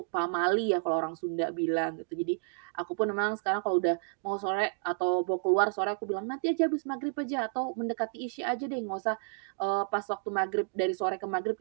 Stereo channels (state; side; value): silent; left; 57 dB below the other